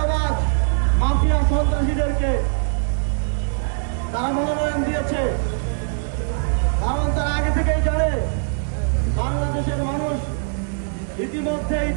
মাফিয়া, সন্ত্রাসীদেরকে তারা মনোনয়ন দিয়েছে। কারণ তারা আগে থেকেই জানে বাংলাদেশের মানুষ ইতিমধ্যেই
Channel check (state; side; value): silent; left; digital silence